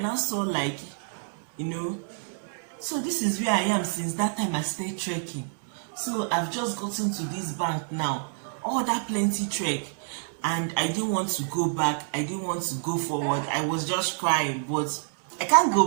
I saw, like, so this is where I am since that time I started trekking. So I've just gotten to this bank now, all that plenty trek, and I didn't want to go back, I didn't want to go forward. I was just crying, but I can't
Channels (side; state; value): left; silent; 60 dB below the other